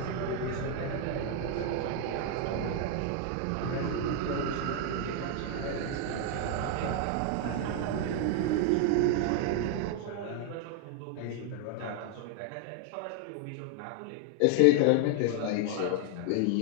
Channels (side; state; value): both; different; correlation 0.00